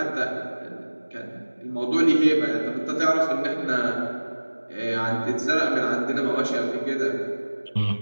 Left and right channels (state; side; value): inverted; both; correlation -1.00